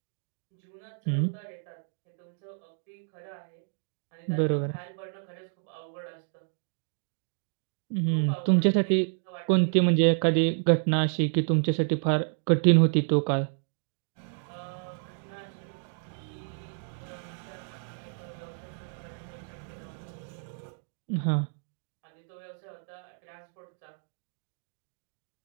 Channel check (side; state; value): left; silent; digital silence